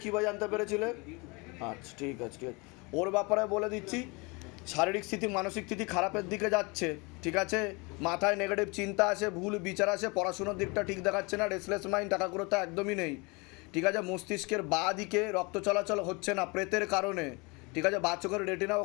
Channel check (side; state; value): right; quieter; 28.1 dB